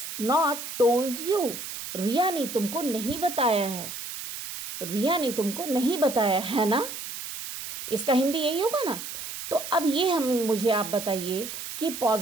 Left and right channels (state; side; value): noise; right; hiss, 8 dB below the sound